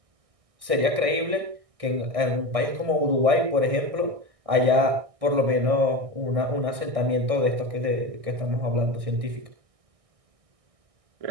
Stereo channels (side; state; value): left; late; 1.6 ms